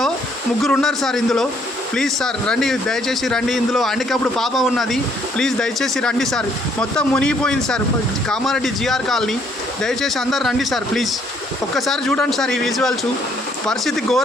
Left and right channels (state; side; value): normal; both; correlation 0.66